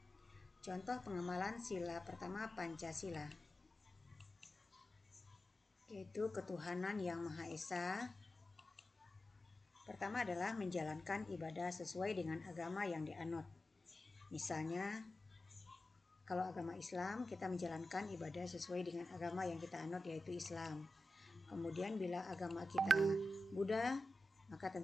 Contoh pengamalan sila pertama Pancasila, yaitu ketuhanan yang Maha Esa. Pertama adalah menjalankan ibadah sesuai dengan agama yang dianut. Misalnya, kalau agama Islam, kita menjalankan ibadah sesuai dengan agama yang kita anut, yaitu Islam. Kemudian bila agama kita Buddha, maka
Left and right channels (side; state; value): both; normal; correlation 0.92